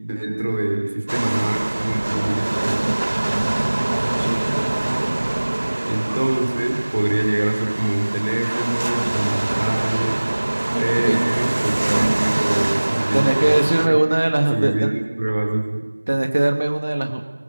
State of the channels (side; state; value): both; inverted; correlation -1.00